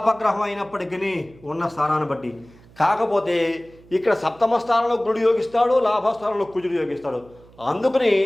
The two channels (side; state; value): right; noise; hum, 25 dB below the sound